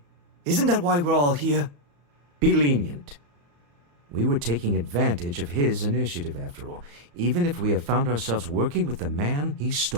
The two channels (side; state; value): left; late; 35 ms